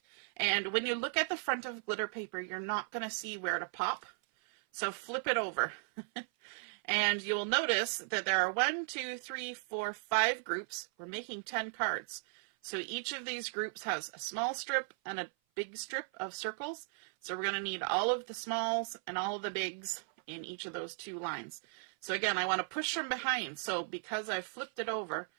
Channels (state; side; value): silent; left; 53 dB below the other